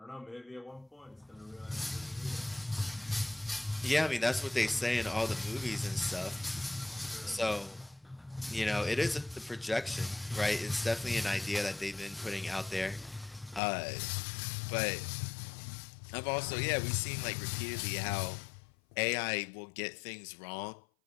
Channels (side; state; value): right; drops out; at 13.6 s